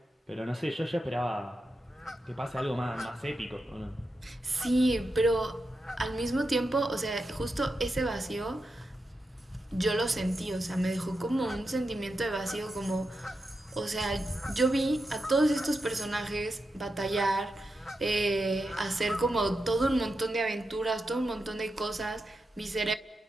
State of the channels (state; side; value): normal; both; correlation 0.88